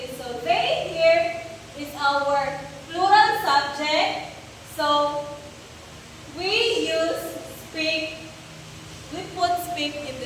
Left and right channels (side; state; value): both; identical; correlation 1.00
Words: So they here is our plural subject. So we use speak. We put speak in